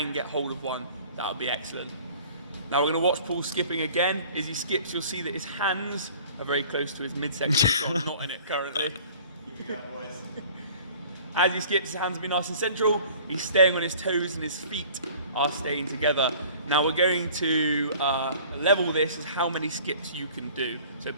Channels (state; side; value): inverted; both; correlation -0.48